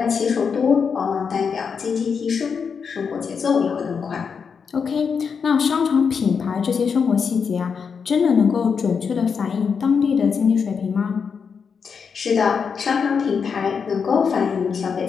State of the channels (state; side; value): quieter; right; 6.1 dB